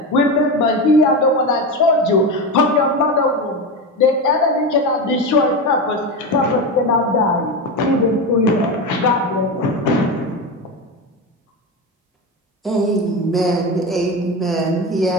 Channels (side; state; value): both; normal; correlation 0.19